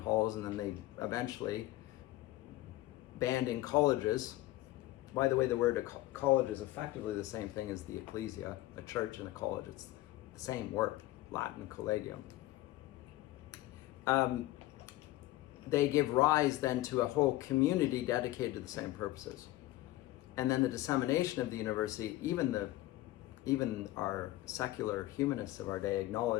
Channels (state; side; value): quieter; right; 16.7 dB